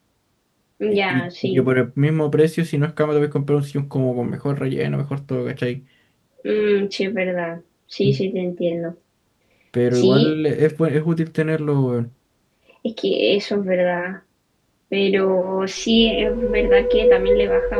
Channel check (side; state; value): both; identical; correlation 1.00